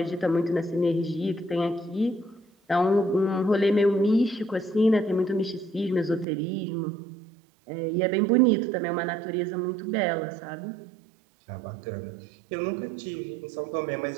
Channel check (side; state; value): left; drops out; at 6.2 s